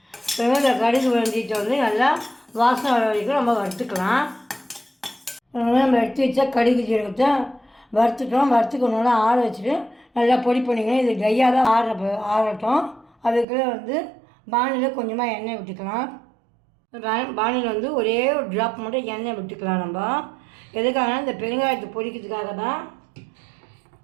பாருங்கள், இந்த கடுகு வெந்தயத்தை வந்து நல்லா வாசனை வர வரைக்கும் நம்ம வறுத்துக்கலாம். நம்ம எடுத்து வச்சா கடுகு ஜீரகத்தை வறுத்துட்டோம். வறுத்துக்கணும்னா ஆற வச்சுட்டு நல்லா பொடி பண்ணிக்கணும். இது ட்ரையாக தான் ஆறட்டும். அதுக்குள்ளே வந்து பானியில் கொஞ்சமாக எண்ணெய் விட்டுக்கலாம். பானியில் வந்து ஒரே ஒரு ட்ராப் மட்டும் எண்ணெய் விட்டுக்கலாம். நம்ம எதுக்காக இந்த பெருங்காயத்தை பொரிக்கிறதுக்காக தான்.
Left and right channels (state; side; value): drops out; left; at 13.5 s